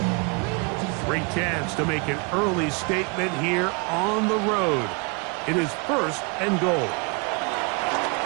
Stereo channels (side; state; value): left; quieter; 32.2 dB